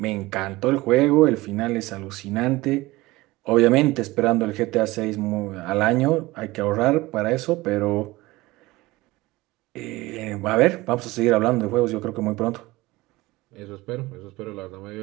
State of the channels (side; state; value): left; quieter; 19.8 dB